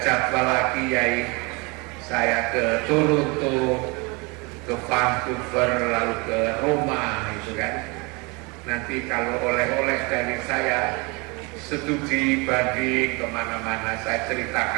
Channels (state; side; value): quieter; left; 28.1 dB